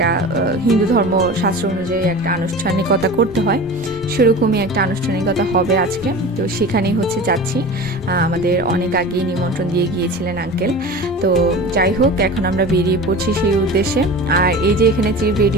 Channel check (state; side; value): normal; both; correlation 0.34